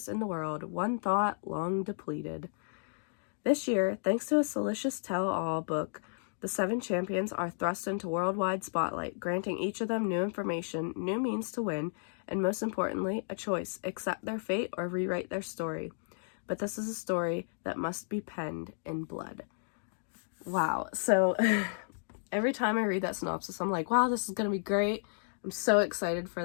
in the world, one thought long depleted. This year, thanks to a salacious tell-all book The 7 champions are thrust into worldwide spotlight, granting each of them new information, new means to win, and most importantly, a choice: accept their fate or rewrite their story. But this is a story that must be penned in blood. Wow. So every time I read that synopsis, I'm like, wow, this is going to be great. I'm so excited for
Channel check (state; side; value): silent; right; digital silence